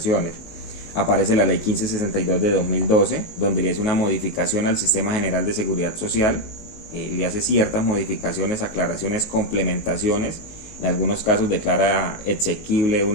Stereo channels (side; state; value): right; late; 19 ms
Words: Aparece la ley 1562 de 2012, donde le hace una modificación al Sistema General de Seguridad Social, le hace ciertas modificaciones, aclaraciones, complementaciones. En algunos casos declara exequible